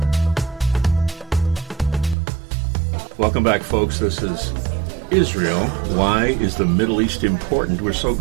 Welcome back, folks. This is Israel. Why is the Middle East important? We're so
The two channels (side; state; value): left; drops out; at 2.1 s